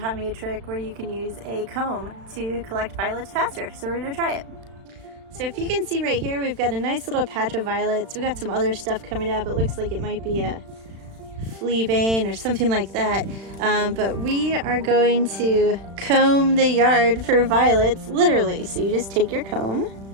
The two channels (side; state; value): left; late; 36 ms